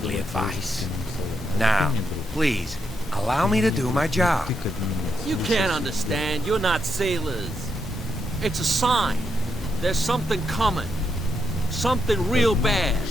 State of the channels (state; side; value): normal; both; correlation 0.81